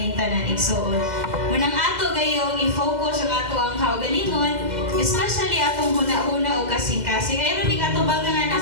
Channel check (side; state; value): left; late; 2.0 ms